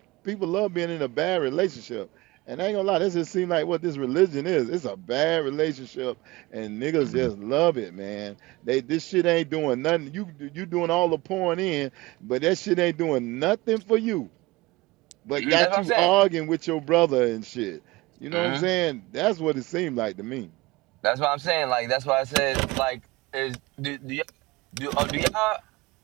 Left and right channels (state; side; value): quieter; left; 21.0 dB